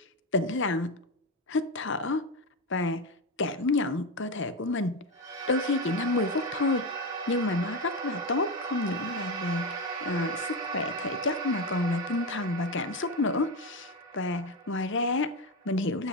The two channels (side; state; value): both; normal; correlation 0.15